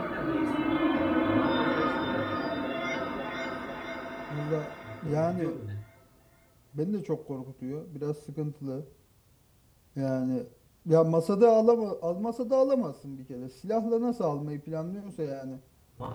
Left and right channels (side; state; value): both; identical; correlation 1.00